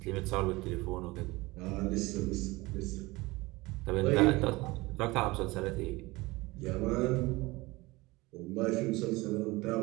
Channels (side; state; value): left; quieter; 21.8 dB